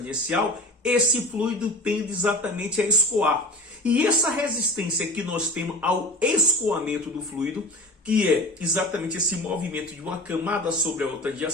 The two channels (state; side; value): normal; both; correlation 0.34